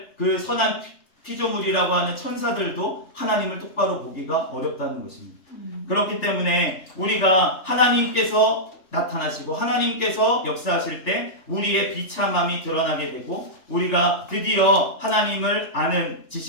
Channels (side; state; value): right; late; 3.4 ms